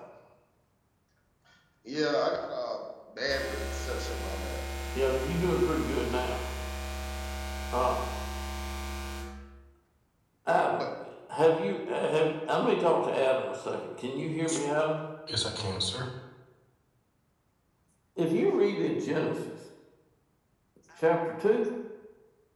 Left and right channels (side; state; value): both; identical; correlation 1.00